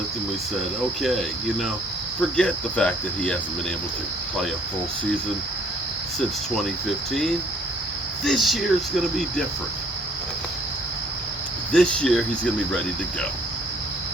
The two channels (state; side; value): normal; both; correlation 0.60